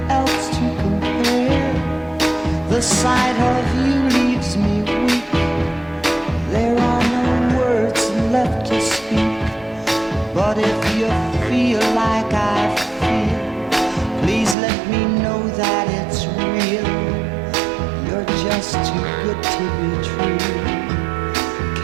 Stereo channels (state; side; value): drops out; left; at 14.6 s